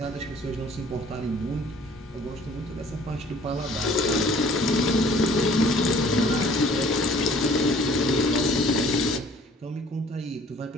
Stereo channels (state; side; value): normal; both; correlation 0.54